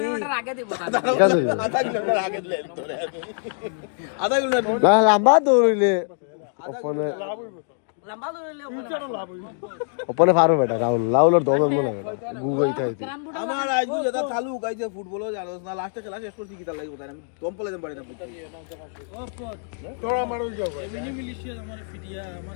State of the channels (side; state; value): right; silent; digital silence